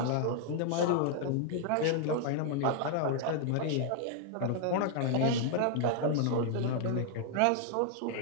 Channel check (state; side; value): different; both; correlation 0.00